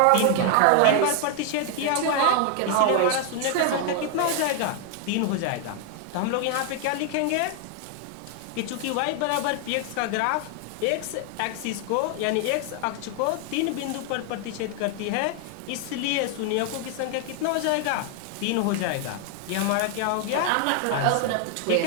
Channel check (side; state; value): both; different; correlation 0.00